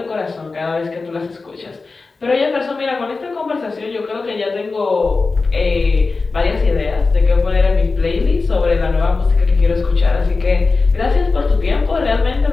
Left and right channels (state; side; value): quieter; right; 4.0 dB